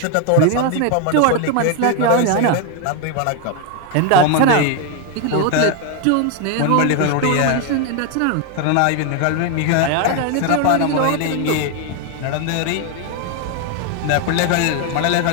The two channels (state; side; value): different; both; correlation 0.01